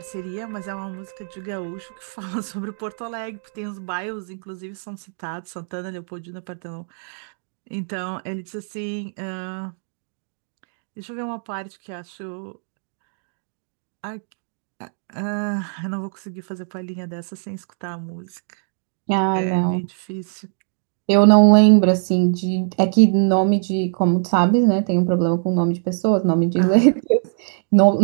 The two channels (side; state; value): left; silent; digital silence